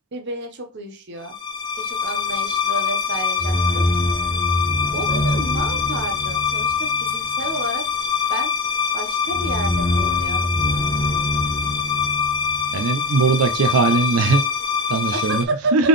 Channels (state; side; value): normal; both; correlation 0.22